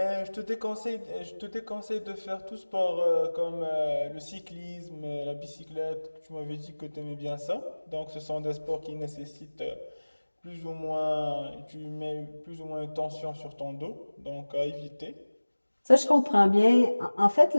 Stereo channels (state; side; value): inverted; both; correlation -1.00